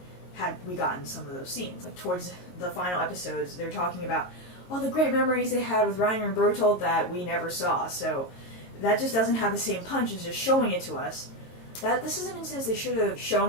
had we gotten some of those scenes. Like, towards the final episodes, they're talking about all the great memories they had with Reiner and Bertolt that we never saw, so that just doesn't have the same punch as just showing it to us. This is an instance they should have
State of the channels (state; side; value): late; right; 22 ms